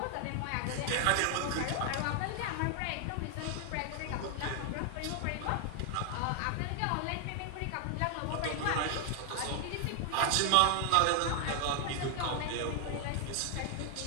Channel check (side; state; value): both; different; correlation 0.00